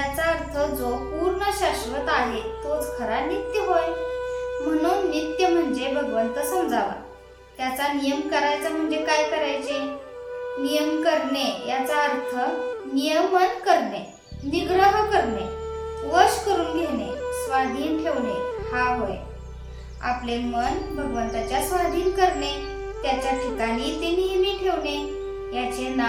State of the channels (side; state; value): both; identical; correlation 1.00